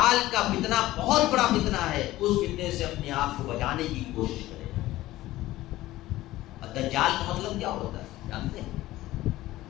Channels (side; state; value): right; quieter; 16.4 dB